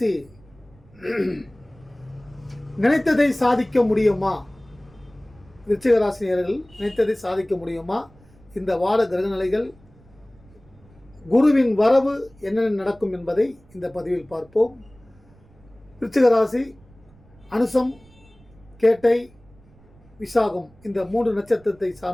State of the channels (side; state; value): right; noise; rumble, 27 dB below the sound